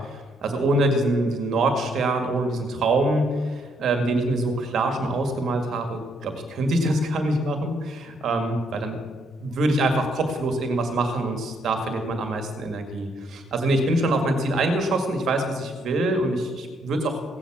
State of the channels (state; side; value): normal; both; correlation 0.72